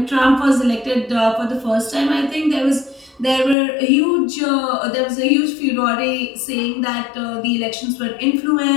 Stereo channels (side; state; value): right; drops out; at 3.6 s